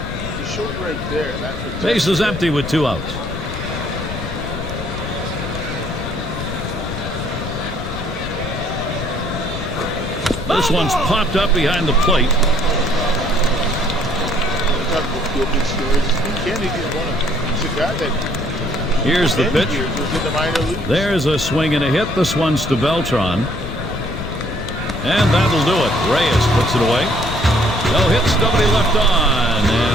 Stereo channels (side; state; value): left; noise; rumble, 7 dB below the sound